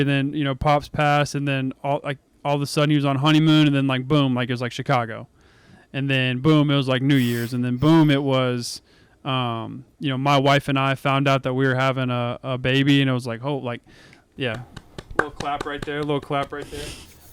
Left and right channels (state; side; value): identical; both; correlation 1.00